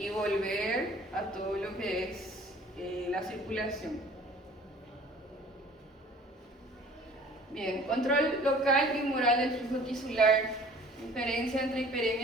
volver a todo lo que es la circulación. Bien, control local y moral del flujo tisular. Diferencia entre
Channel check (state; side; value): normal; both; correlation 0.50